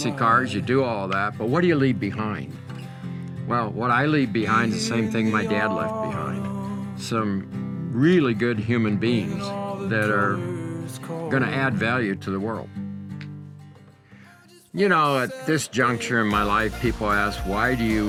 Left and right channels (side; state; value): both; identical; correlation 1.00